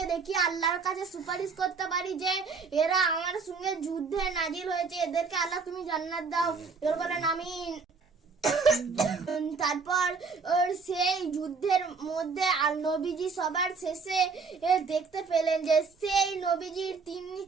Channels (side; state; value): left; quieter; 4.9 dB